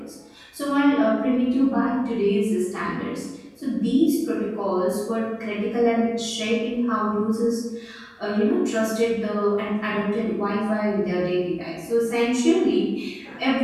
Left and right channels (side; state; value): both; identical; correlation 1.00